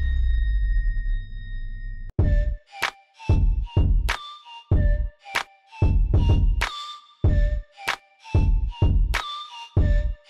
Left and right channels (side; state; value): both; identical; correlation 1.00